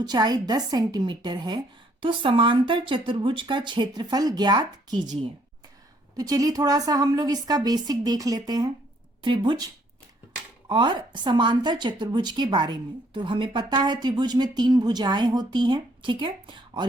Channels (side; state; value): both; normal; correlation 0.66